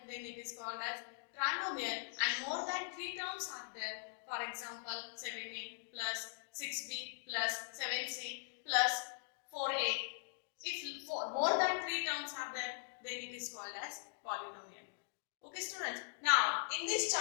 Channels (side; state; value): right; silent; digital silence